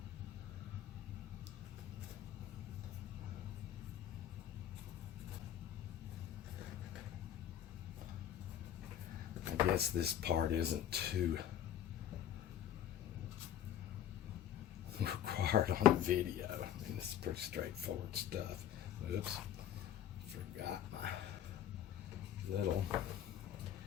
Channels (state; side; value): quieter; right; 10.6 dB